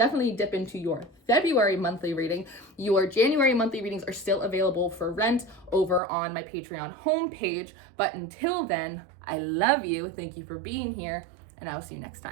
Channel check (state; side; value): drops out; left; at 6.0 s